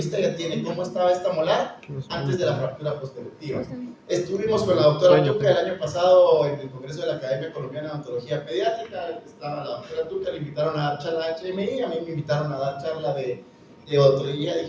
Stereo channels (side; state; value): both; identical; correlation 1.00